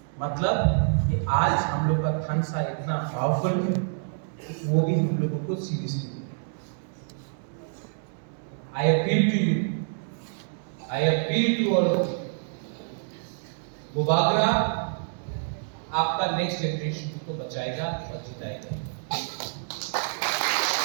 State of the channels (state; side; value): silent; left; digital silence